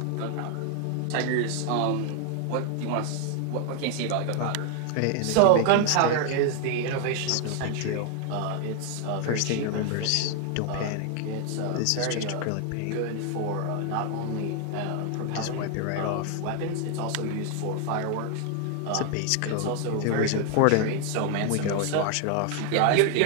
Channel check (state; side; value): different; both; correlation 0.00